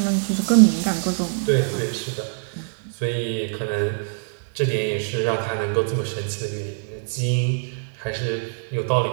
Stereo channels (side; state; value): left; silent; digital silence